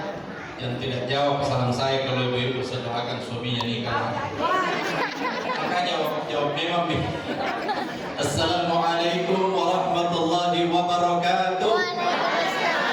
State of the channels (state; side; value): identical; both; correlation 1.00